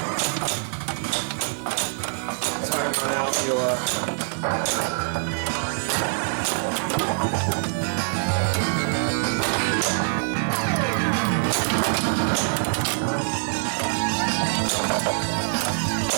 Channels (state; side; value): silent; left; digital silence